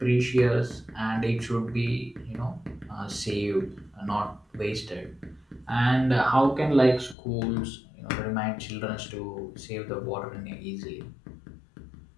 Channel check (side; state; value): right; drops out; at 7.2 s